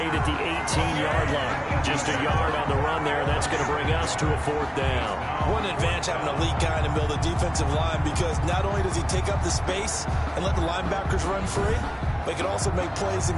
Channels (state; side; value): identical; both; correlation 1.00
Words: at the 18-yard line. Just a yard on the run there. That's going to bring us to a 4th down. What an advantage having an elite guy in the middle of the defensive line, because not only does he take up the space and let the linebackers run free, but he can also make plays